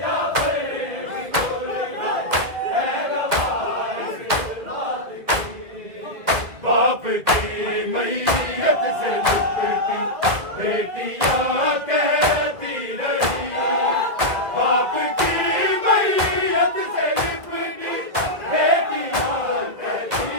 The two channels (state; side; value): late; left; 1.7 ms